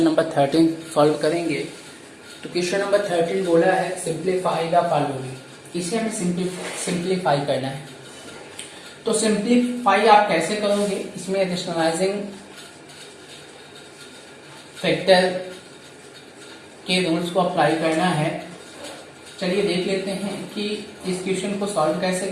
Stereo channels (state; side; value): identical; both; correlation 1.00